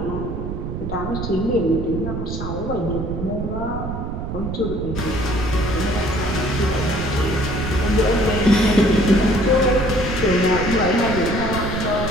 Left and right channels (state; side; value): noise; right; rumble, 5 dB below the sound